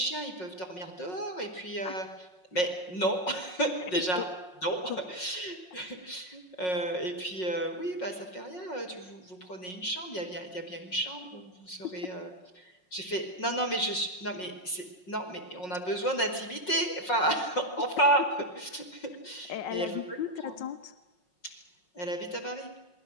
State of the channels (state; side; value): late; right; 5.5 ms